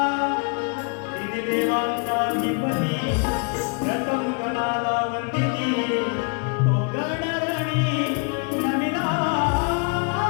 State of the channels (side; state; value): right; quieter; 35.7 dB